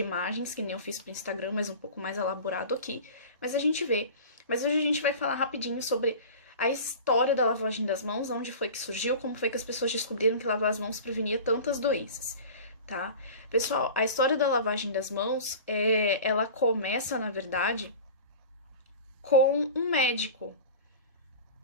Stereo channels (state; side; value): inverted; both; correlation -0.36